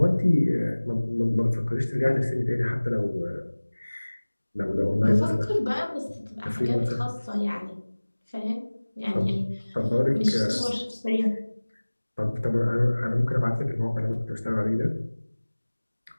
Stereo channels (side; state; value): both; inverted; correlation -1.00